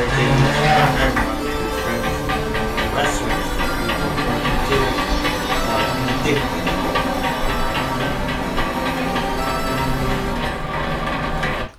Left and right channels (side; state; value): both; identical; correlation 1.00